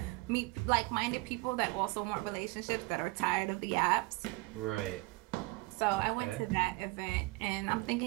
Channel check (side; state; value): left; quieter; 24.1 dB